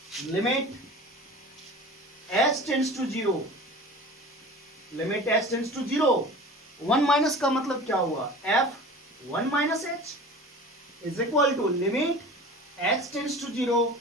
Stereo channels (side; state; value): both; normal; correlation 0.38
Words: limit h tends to 0, limit h tends to 0, 1 minus का मतलब क्या हुआ, f1 minus h is equal to limit h tends to 0,